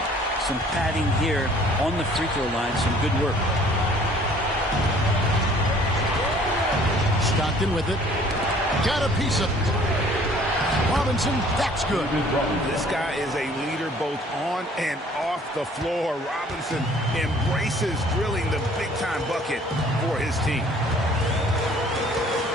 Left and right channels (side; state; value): both; normal; correlation 0.55